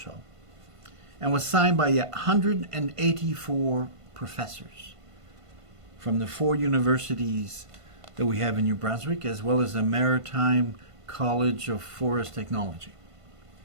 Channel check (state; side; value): late; left; 1.5 ms